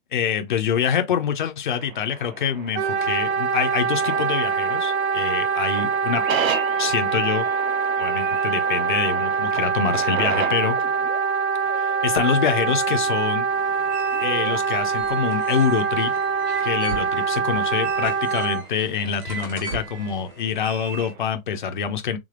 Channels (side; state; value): both; normal; correlation -0.07